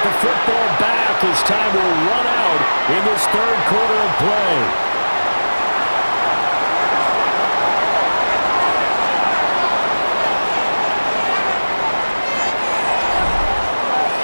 the football back as time will run out in this third quarter of play.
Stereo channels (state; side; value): inverted; both; correlation -1.00